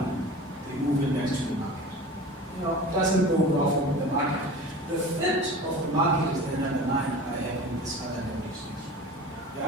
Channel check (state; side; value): normal; both; correlation 0.36